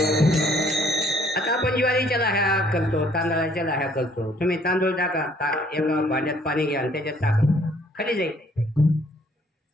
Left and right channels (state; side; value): normal; both; correlation 0.62